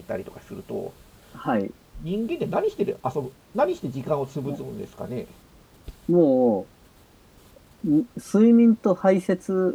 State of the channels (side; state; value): both; identical; correlation 1.00